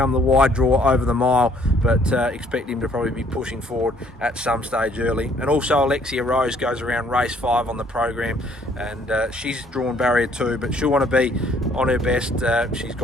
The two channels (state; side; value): normal; both; correlation 0.63